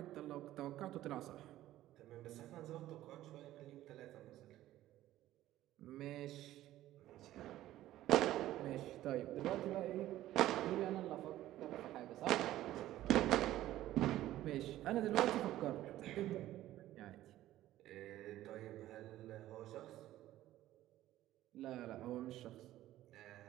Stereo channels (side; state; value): left; quieter; 14.4 dB